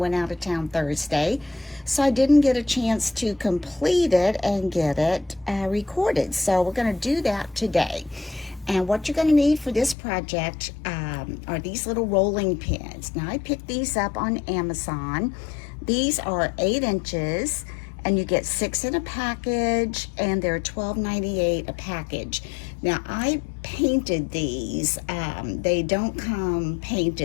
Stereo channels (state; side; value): drops out; right; at 10.0 s